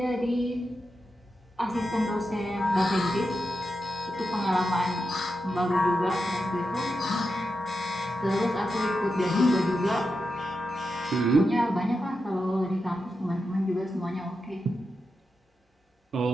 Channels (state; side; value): normal; both; correlation 0.88